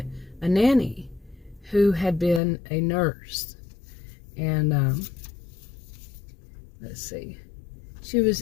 a nanny who had been a nurse. And, let's see. She was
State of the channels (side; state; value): right; drops out; at 2.4 s